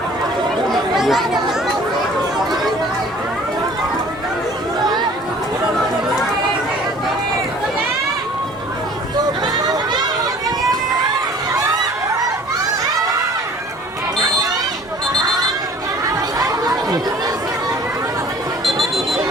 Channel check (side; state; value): both; normal; correlation 0.50